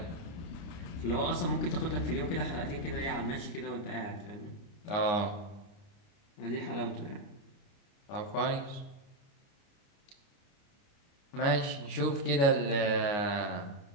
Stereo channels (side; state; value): right; late; 29 ms